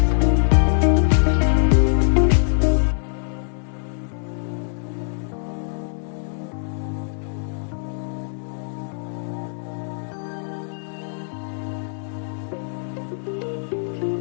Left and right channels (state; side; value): silent; right; digital silence